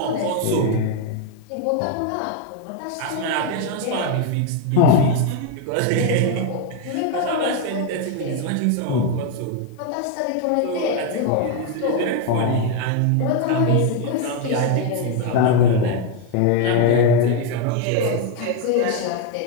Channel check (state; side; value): different; both; correlation 0.01